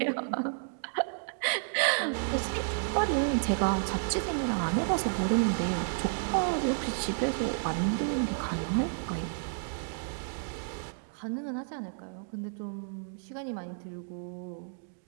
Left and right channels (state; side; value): silent; left; digital silence